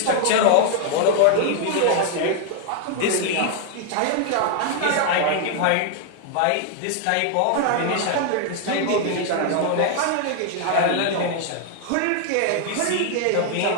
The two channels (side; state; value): both; different; correlation 0.00